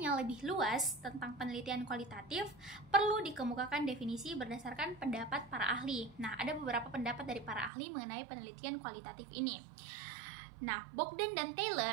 yang lebih luas tentang penelitian kualitatif, perlu dikemukakan definisi berdasarkan pendapat para ahli. Nah, ada beberapa pendapat dari para ahli mengenai penelitian kualitatif ini. Nah, Bogdan dan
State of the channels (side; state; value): left; drops out; at 7.7 s